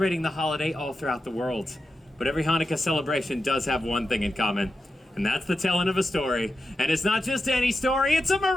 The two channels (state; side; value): normal; both; correlation 0.90